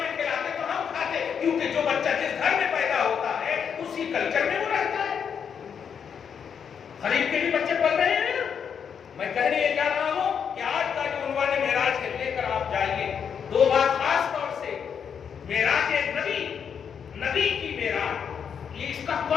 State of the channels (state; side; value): quieter; right; 7.3 dB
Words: کھلاتے تو ہم کھاتے, کیونکہ جو بچہ جس گھر میں پیدا ہوتا ہے اسی کلچر میں وہ رہتا ہے. خرید کے بھی بچے پڑھ رہے ہیں. میں کہنے یہ جا رہا ہوں کہ آج کا جو عنوان معراج ہے لے کر آپ جائیے. 2 بات خاص طور سے, معراج نبی, نبی کی معراج, یہ اس کا